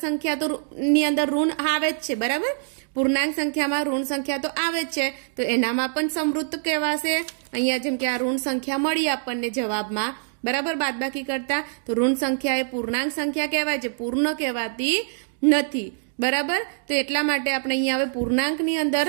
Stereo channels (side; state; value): left; silent; digital silence